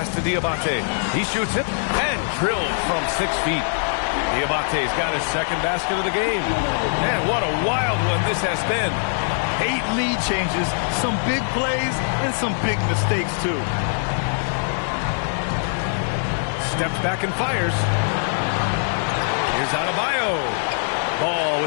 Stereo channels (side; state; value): right; silent; digital silence